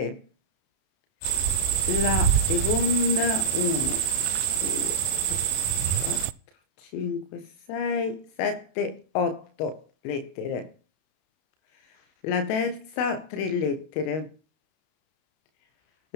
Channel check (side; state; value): right; late; 32 ms